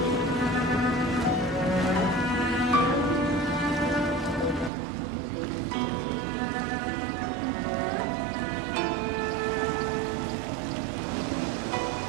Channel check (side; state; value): left; drops out; at 4.7 s